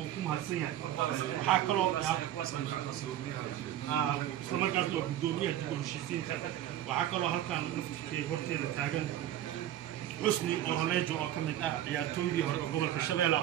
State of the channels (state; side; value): quieter; left; 12.2 dB